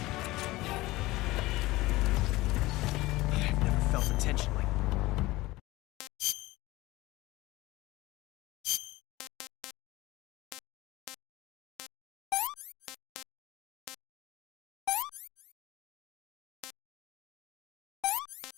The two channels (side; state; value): right; quieter; 19.2 dB